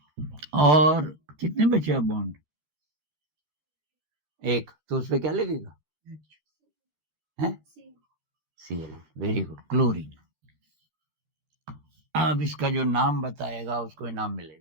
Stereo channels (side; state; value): left; late; 13 ms